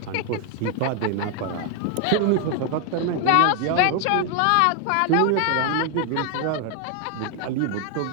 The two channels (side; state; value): both; different; correlation 0.00